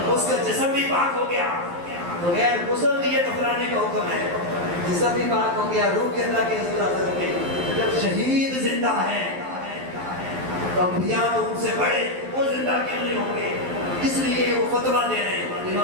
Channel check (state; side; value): late; left; 11 ms